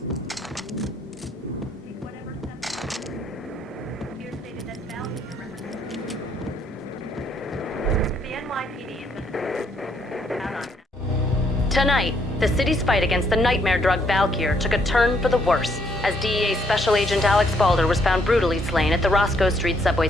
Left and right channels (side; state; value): both; normal; correlation 0.70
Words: Tonight, the city's fight against the nightmare drug Valkyr took a turn for the worse, as DEA Special Agent Alex Balder was found brutally slain at the Roscoe Street subway